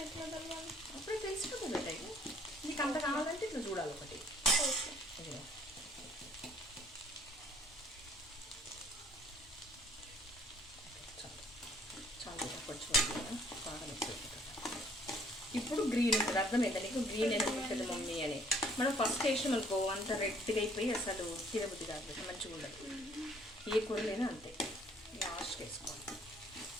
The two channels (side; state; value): both; normal; correlation 0.60